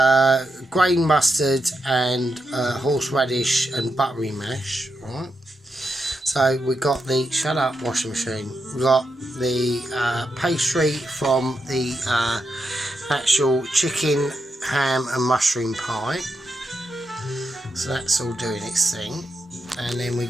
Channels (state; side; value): normal; both; correlation 0.85